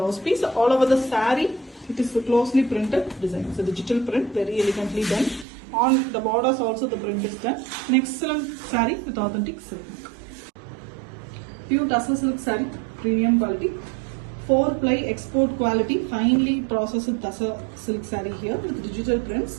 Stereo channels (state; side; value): drops out; left; at 5.5 s